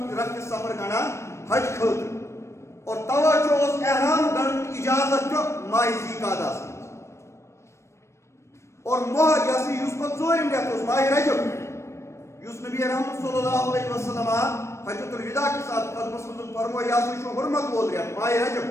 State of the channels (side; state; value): right; late; 0.13 ms